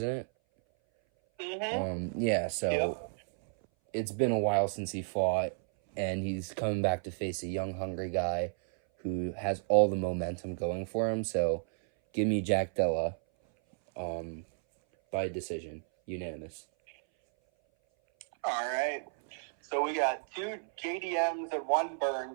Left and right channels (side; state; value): left; silent; 56 dB below the other